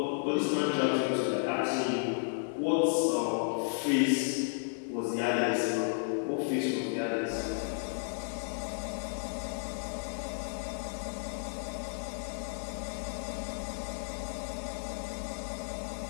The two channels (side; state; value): right; silent; digital silence